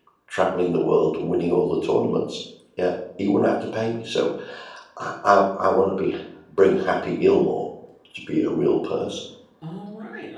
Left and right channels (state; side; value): identical; both; correlation 1.00